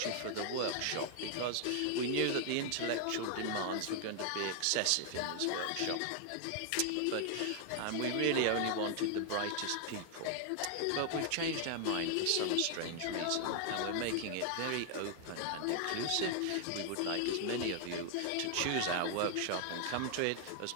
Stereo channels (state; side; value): different; both; correlation 0.00